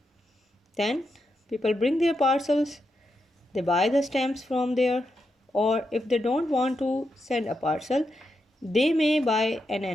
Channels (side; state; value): both; normal; correlation 0.85